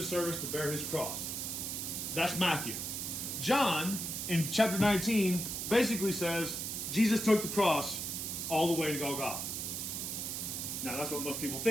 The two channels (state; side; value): noise; right; hiss, 4 dB below the sound